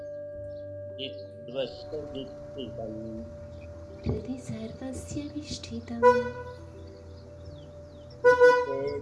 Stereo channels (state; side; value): identical; both; correlation 1.00